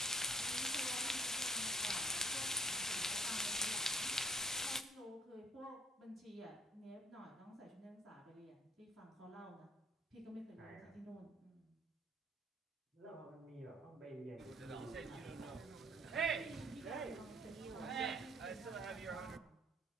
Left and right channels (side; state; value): both; normal; correlation 0.57